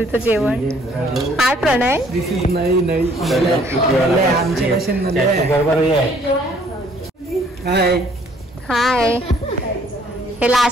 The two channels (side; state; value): both; normal; correlation 0.61